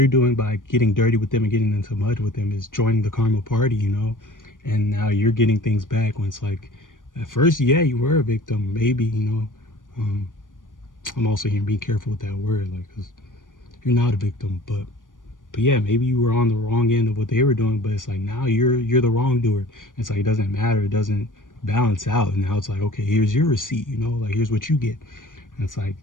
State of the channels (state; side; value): late; right; 0.88 ms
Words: doing by getting dirty with them and getting into mud with them is joining the karma party, you know. And now you're getting things back, when it's like, at first, yeah, you were a victim, maybe, you know. um I'm also here being careful with that word, like, because you're not a victim, but yeah, maybe you were on the wrong end of what they were doing, but it's like now you're the wrongdoer. It's like, it doesn't matter, it doesn't balance out. And now it's like, okay, here's your receipt, you know, like, here's what you get. And it's like,